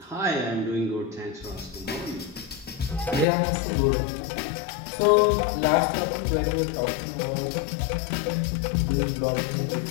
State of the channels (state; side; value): drops out; right; at 3.2 s